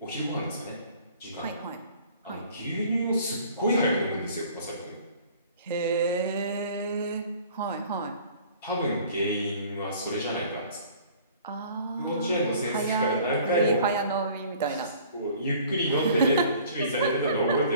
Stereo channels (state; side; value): inverted; both; correlation -0.51